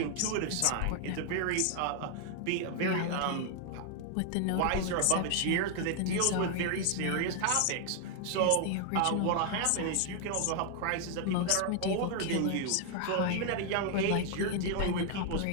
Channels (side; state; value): both; different; correlation 0.00